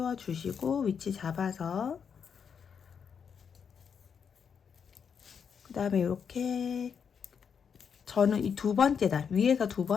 위치 잡아서 그 다음에 이렇게 저는 이 2번째 단 위에서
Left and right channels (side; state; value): right; quieter; 6.8 dB